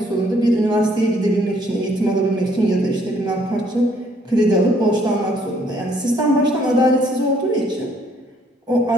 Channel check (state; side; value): normal; both; correlation 0.65